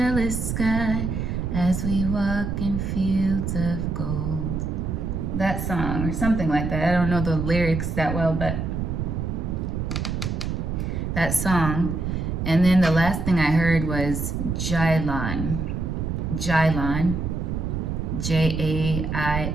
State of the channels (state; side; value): noise; right; rumble, 2 dB below the sound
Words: sky as we walk in fields of gold. That song, or something like that. I don't know the lyrics that well, but that song. And then the last thing I heard was Jailan. Jailan. Jailan.